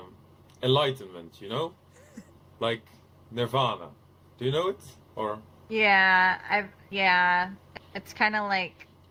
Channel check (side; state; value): both; identical; correlation 1.00